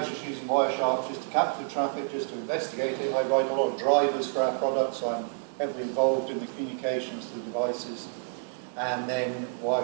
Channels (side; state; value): left; silent; 59 dB below the other